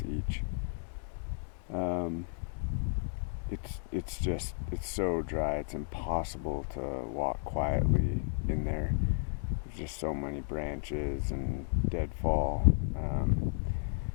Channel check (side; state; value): right; silent; digital silence